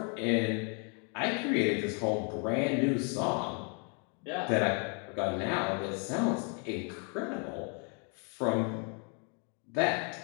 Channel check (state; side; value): quieter; right; 38.3 dB